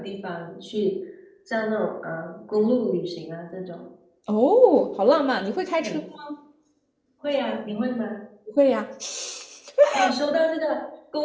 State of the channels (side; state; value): both; identical; correlation 1.00